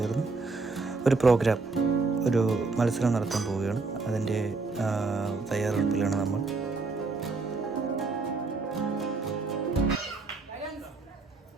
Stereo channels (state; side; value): quieter; left; 3.9 dB